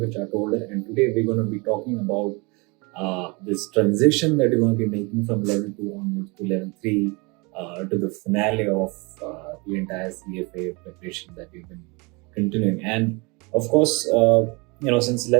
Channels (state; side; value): quieter; left; 28.2 dB